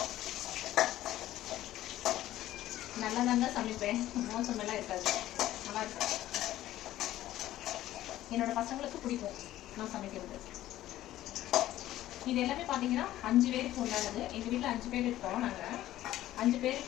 நல்லா தாங்க சமைப்பேன், மோசமெல்லாம் இருக்காது, நல்லா இருக்கும். என்னோட பசங்களுக்கு பிடிக்கும் நான் சமைக்கிறது. இது எல்லாமே பார்த்தீங்கன்னா 5 பேருக்கு உண்டானது. எங்கள் வீட்டில் 5 பேர் இருக்கோம். நாங்கள் 5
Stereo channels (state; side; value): quieter; right; 14.2 dB